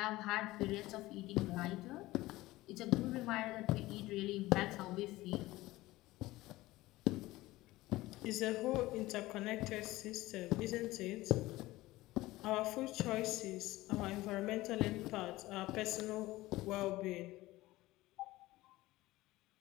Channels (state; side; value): quieter; right; 18.3 dB